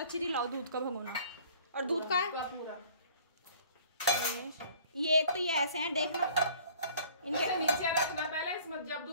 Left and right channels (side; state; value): both; inverted; correlation -0.52